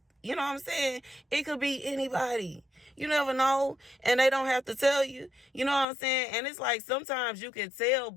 you know what I'm saying, it could be anybody. You never know, and they don't have to tell you. You know what I'm saying? And it's like sometimes you can tell,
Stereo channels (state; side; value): drops out; right; at 5.9 s